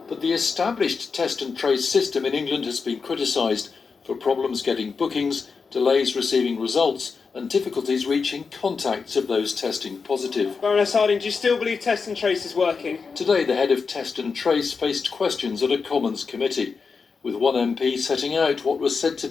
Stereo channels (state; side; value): quieter; right; 5.1 dB